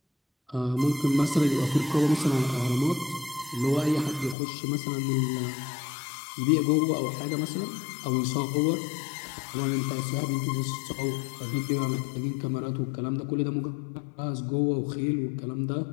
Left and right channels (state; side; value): drops out; right; at 4.4 s